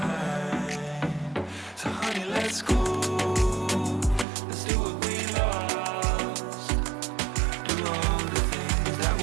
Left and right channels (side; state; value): left; drops out; at 4.2 s